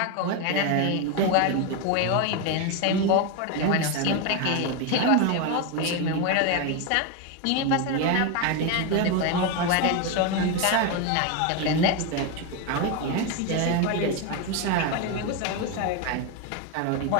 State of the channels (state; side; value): different; both; correlation 0.02